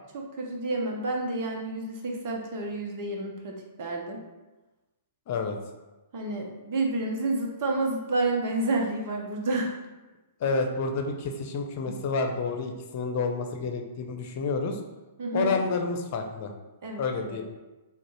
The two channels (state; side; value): inverted; both; correlation -0.45